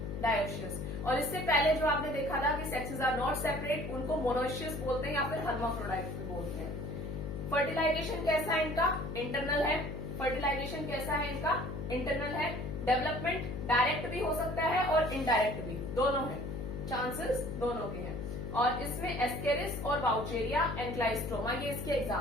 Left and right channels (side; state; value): left; noise; hum, 6 dB below the sound